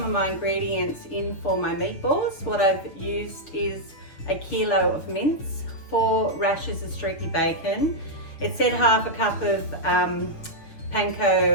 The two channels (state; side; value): late; right; 6.7 ms